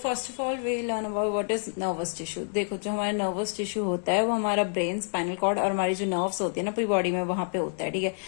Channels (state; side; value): silent; right; digital silence